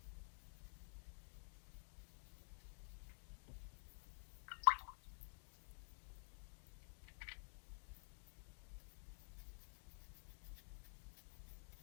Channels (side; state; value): right; silent; digital silence